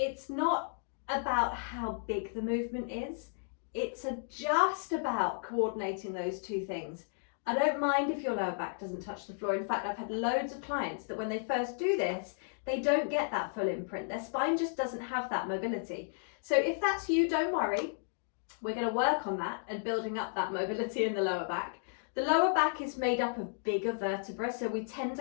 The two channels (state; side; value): silent; right; digital silence